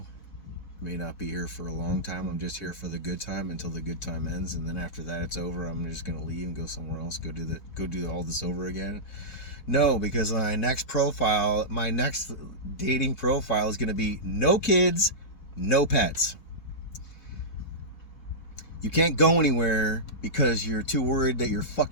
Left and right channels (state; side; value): late; right; 4.1 ms